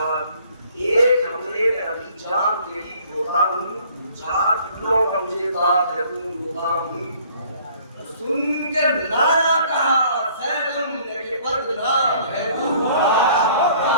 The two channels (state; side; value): inverted; both; correlation -0.56